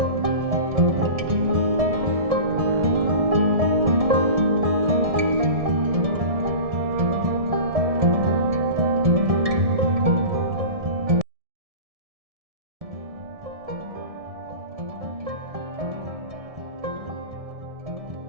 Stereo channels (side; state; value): left; late; 1.7 ms